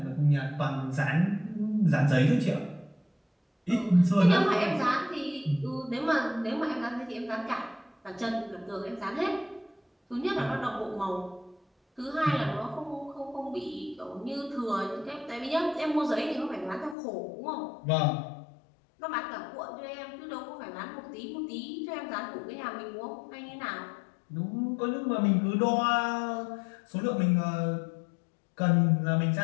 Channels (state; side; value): drops out; right; at 16.9 s